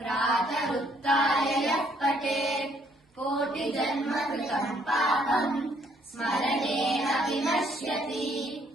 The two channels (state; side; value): normal; both; correlation 0.67